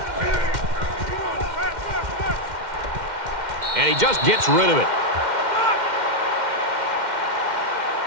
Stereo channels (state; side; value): late; left; 2.1 ms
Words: And he just gets rid of it.